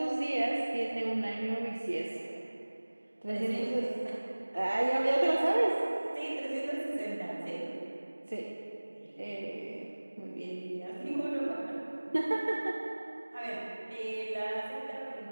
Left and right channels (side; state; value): both; inverted; correlation -1.00